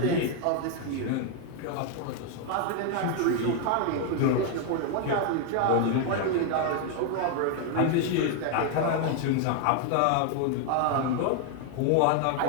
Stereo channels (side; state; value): both; different; correlation 0.01